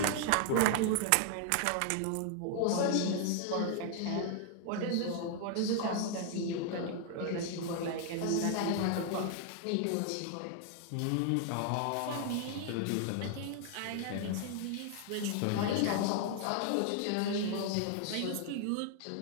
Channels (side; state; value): both; different; correlation 0.00